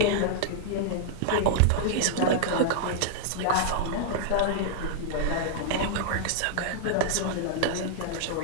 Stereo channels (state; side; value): different; both; correlation -0.01